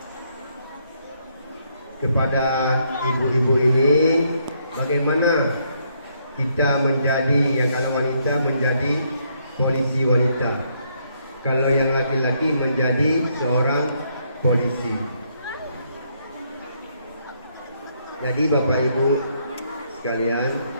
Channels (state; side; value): inverted; both; correlation -0.73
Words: kepada ibu-ibu ini bagaimana kita menjadi, yang kalau wanita menjadi polisi wanita, kalau yang laki-laki menjadi seorang polisi. Jadi Bapak Ibu sekalian,